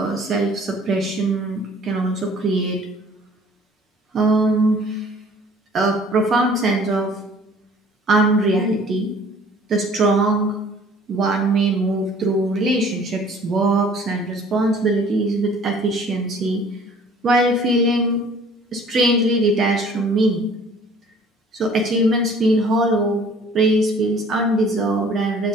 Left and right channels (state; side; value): normal; both; correlation 0.52